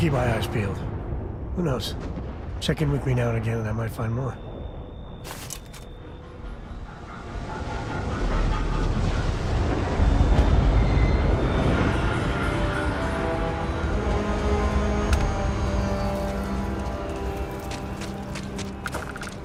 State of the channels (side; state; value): both; identical; correlation 1.00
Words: my eyes peeled. Who knows? Check in with me now and again and I might find more.